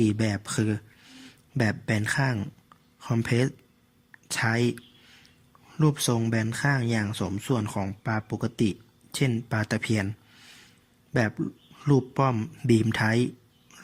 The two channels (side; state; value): both; identical; correlation 1.00